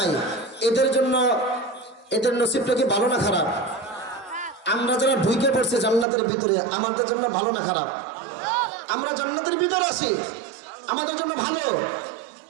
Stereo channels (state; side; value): drops out; left; at 6.1 s